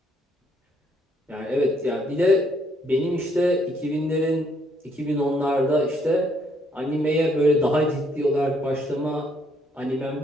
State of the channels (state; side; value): normal; both; correlation 0.69